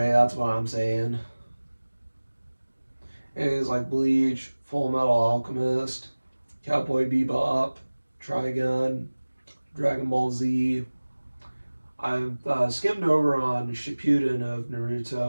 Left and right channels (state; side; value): inverted; both; correlation -1.00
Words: that's what I'm saying. Animes like Bleach, Full Metal Alchemist, Cowboy Bebop, Trigun, Dragon Ball Z. I've skimmed over on Shippuden of